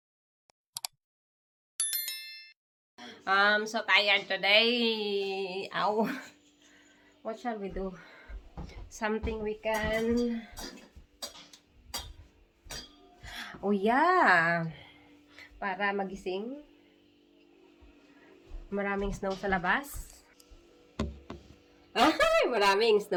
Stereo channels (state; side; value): identical; both; correlation 1.00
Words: I'm so tired today. Ow. What shall we do? Something we can... Oh yeah! Para magising. Maraming snow sa labas. Ay, maraming